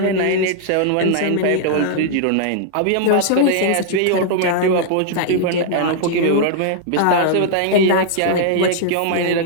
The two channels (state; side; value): different; both; correlation -0.01